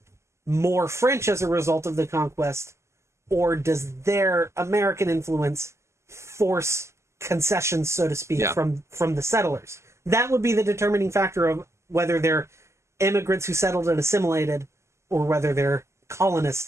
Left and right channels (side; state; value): left; late; 0.13 ms